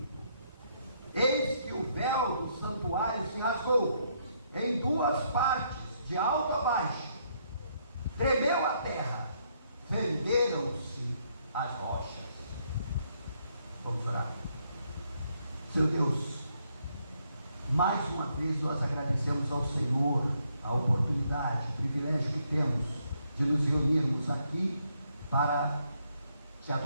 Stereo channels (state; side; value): inverted; both; correlation -0.73